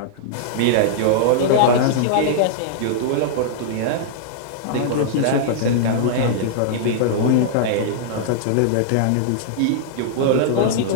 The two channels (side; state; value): both; different; correlation -0.01